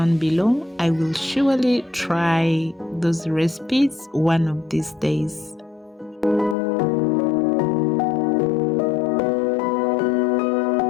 below. I will surely try those recipes one of these days.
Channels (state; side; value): drops out; right; at 6.6 s